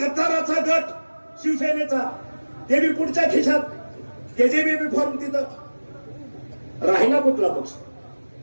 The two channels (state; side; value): inverted; both; correlation -1.00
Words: गट शिवसेनेचा, ते बी पुढच्या खिशात, त्याचे बी युनिफॉर्म तिथं. राहिला कुठला पक्ष?